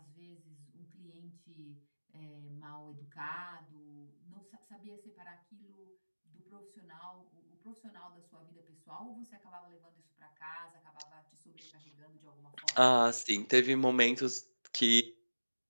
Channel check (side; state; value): both; inverted; correlation -1.00